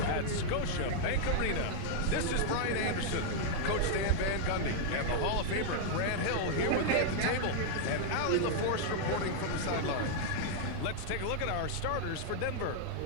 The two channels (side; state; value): both; different; correlation -0.01